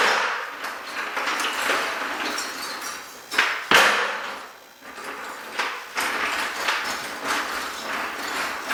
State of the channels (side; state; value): both; identical; correlation 1.00